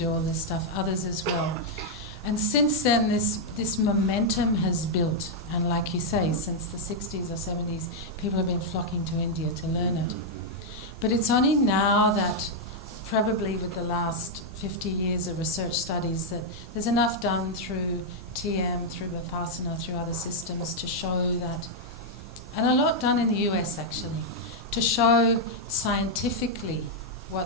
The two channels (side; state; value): both; normal; correlation -0.03